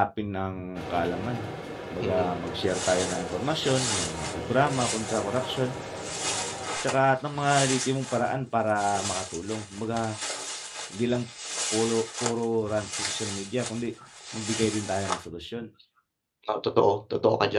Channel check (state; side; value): identical; both; correlation 1.00